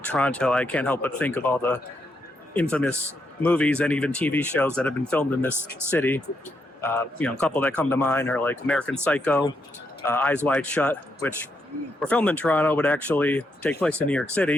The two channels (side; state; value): both; normal; correlation 0.80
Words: Toronto, I can't help but think of all the infamous movies and even TV shows that have been filmed in this city. You know, a couple that come to mind are like American Psycho, Eyes Wide Shut, which were filmed in Toronto but actually take place in New York